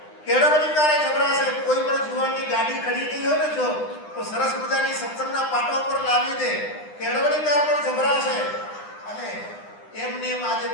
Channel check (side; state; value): right; late; 9.9 ms